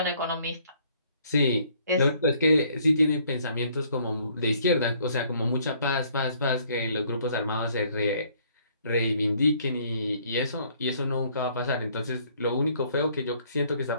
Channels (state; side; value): inverted; both; correlation -0.63